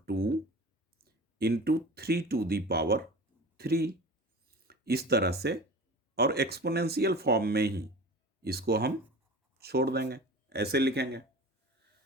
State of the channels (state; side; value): normal; both; correlation 0.37